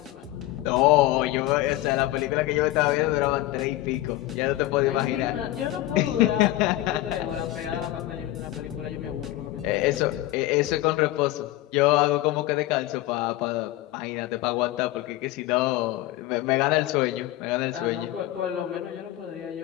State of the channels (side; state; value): right; quieter; 15.9 dB